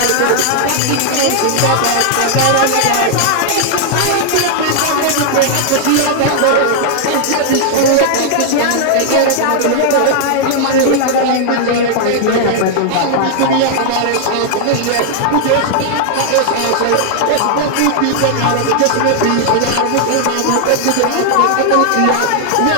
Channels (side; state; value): both; different; correlation -0.01